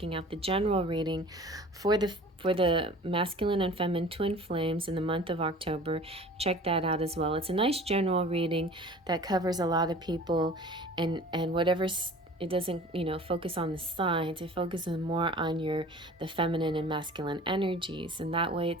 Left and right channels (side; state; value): both; normal; correlation 0.44